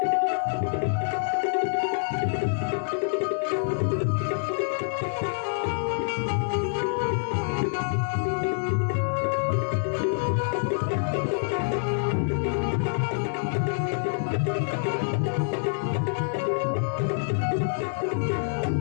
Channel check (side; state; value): right; silent; 61 dB below the other